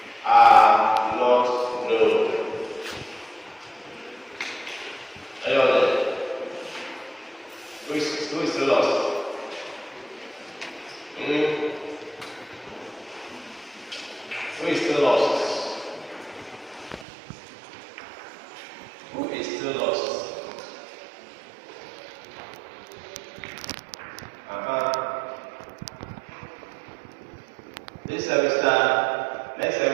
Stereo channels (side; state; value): left; drops out; at 17.1 s